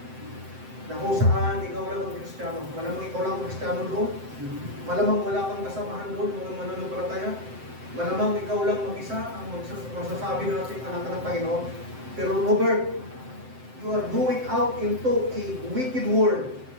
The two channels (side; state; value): left; late; 7.7 ms